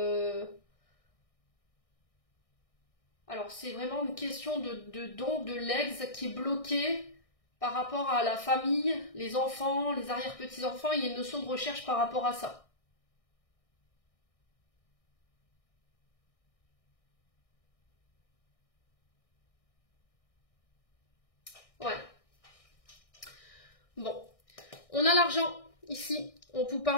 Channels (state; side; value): late; right; 1.6 ms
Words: alors c'est vraiment une question de don de l'ex qui est bloqué par rapport à la famille, les enfants, les arrière-petits-enfants, il y a une notion de recherche par rapport à ça. Ouais. Bon. On a l'argent ici. On vous